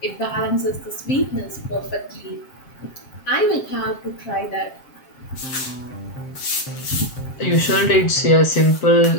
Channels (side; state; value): right; late; 7.6 ms